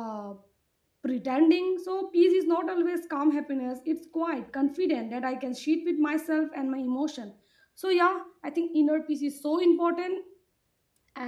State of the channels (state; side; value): identical; both; correlation 1.00